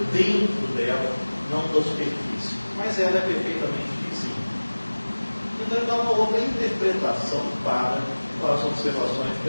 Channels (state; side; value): inverted; both; correlation -1.00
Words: dentro dela, não da superfície. Mas ela é perfeitamente vizinha. Então ele dá uma outra interpretação para as observações de